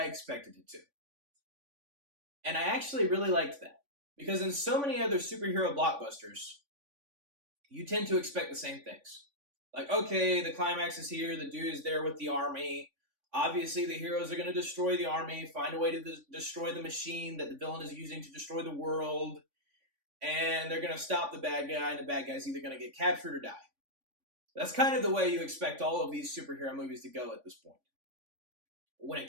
expected it to. And I actually really liked that. Because in so many other superhero blockbusters, you tend to expect the same things. Like, okay, the climax is here, the dude is there with the army. Obviously, the heroes are going to destroy the army, find a way to destroy the machine that the villain is using to destroy the world, and they're going to stop the bad guy, and the bad guy's either going to get captured or die. That's kind of the way you expect all of these superhero movies to go at this point. When it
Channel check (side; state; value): left; late; 3.5 ms